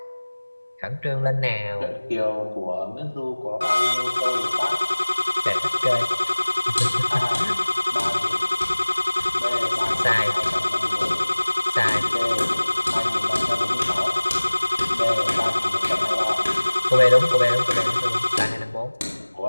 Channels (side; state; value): both; inverted; correlation -1.00